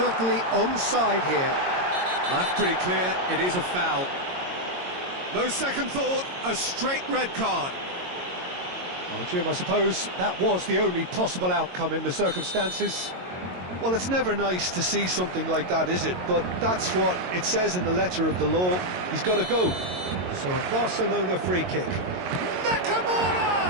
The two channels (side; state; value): left; late; 22 ms